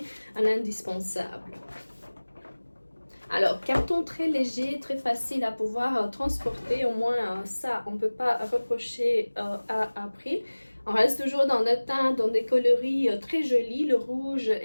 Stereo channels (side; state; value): both; inverted; correlation -1.00